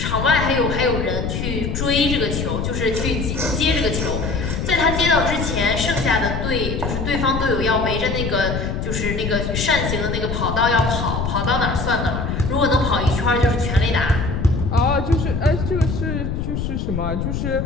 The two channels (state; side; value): noise; left; rumble, 2 dB below the sound